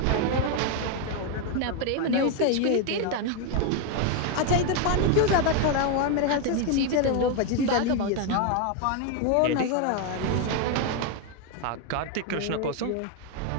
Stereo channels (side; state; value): both; different; correlation 0.01